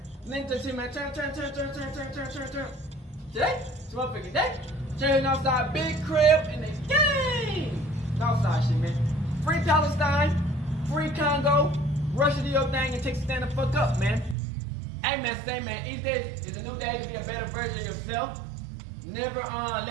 Link to man, turn. Today, it's motherfucking day. Turning outside, big crib in the game. Outside shit, man. Free Palestine, free Congo. Russia do your thing and take a stand the fuck up, man. Hey man, each day is a new day to be a better version of yourself. Never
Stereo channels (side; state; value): left; drops out; at 14.4 s